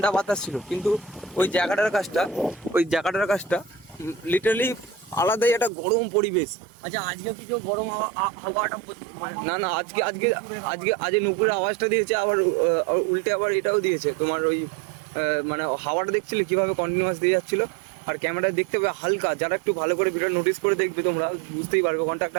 বাতাস ছিল, কিন্তু ওই জায়গাটার কাজটা লিটারালি আলাদাই একটা গরম পরিবেশ। আচ্ছা আজকে কি কেউ গরম হাওয়াটা না আজকে নুপুরের আওয়াজটা দিয়েছে, আবার উল্টে আবার এটাও দিয়েছে তোমার ওই মানে হাওয়াটা দেখছিলে কিভাবে কন্টিনিউয়াস দিয়ে যাচ্ছিল। আর ক্যামেরায় দেখতে পাবে হালকা, যারা একটু ভালো করে ভিডিও নোটিস করে দেখবে তোমরা বুঝতেই পারবে ওখানটা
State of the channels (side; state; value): left; drops out; at 5.7 s